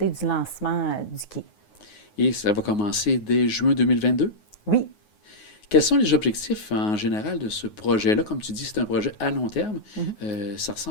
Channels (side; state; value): right; late; 9.5 ms